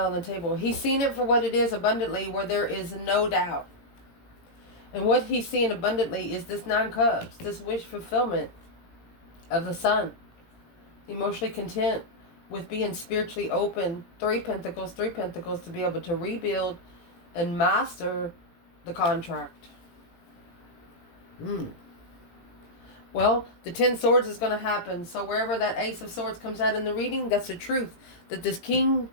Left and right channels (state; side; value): late; right; 17 ms